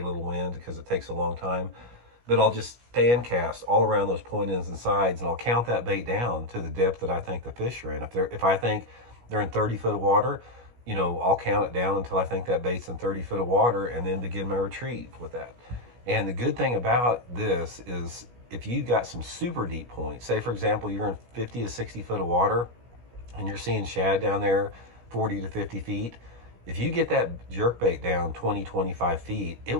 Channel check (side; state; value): left; late; 17 ms